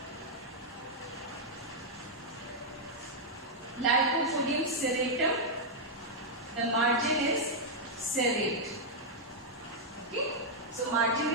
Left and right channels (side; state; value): both; normal; correlation -0.05